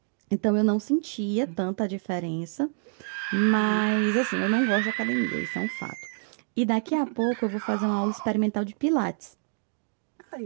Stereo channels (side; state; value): left; silent; 60 dB below the other